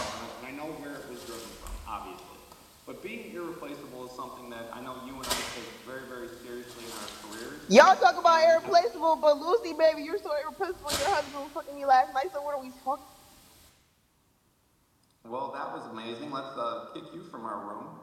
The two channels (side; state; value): both; identical; correlation 1.00